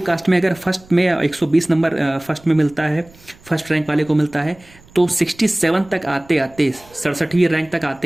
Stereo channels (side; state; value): right; noise; rumble, 26 dB below the sound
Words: कास्ट में अगर फर्स्ट में 120 नंबर फर्स्ट में मिलता है, फर्स्ट रैंक वाले को मिलता है, तो 67 तक आते आते 67वीं रैंक तक